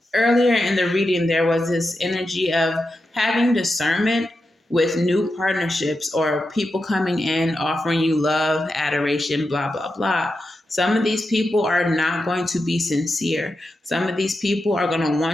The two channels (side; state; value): both; normal; correlation 0.89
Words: earlier in the reading, there was this energy of having discernment with new partnerships or people coming in, offering you love, adoration, blah, blah, blah. Some of these people are not going to be sincere. Some of these people are going to